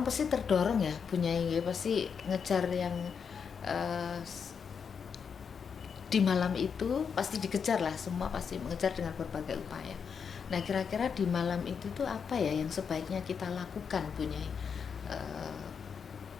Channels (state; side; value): quieter; right; 6.5 dB